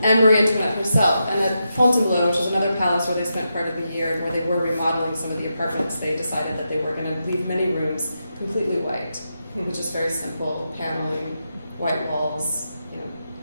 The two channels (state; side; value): inverted; both; correlation -0.86